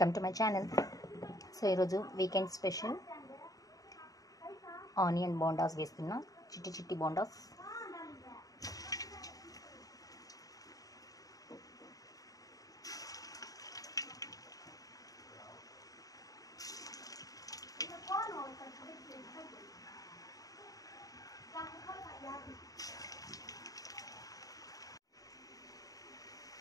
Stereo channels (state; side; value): late; right; 0.17 ms